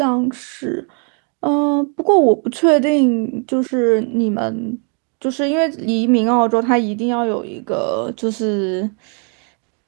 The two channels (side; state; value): left; quieter; 39.3 dB